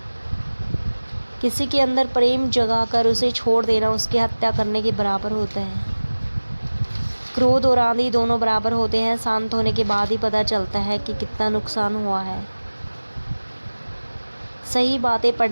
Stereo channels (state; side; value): inverted; both; correlation -1.00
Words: किसी के अंदर प्रेम जगाकर उसे छोड़ देना उसकी हत्या करने के बराबर होता है। क्रोध और आंधी दोनों बराबर होते हैं, शांत होने के बाद ही पता चलता है कि कितना नुकसान हुआ है। सही बातें